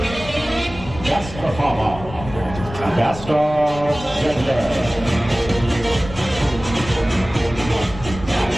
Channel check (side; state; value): left; noise; rumble, 13 dB below the sound